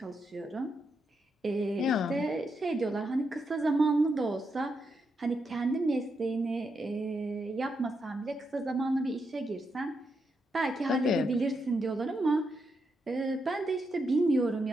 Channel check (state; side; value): normal; both; correlation 0.83